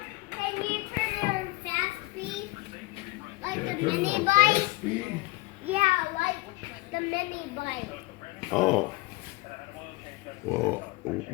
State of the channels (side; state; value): right; quieter; 22.7 dB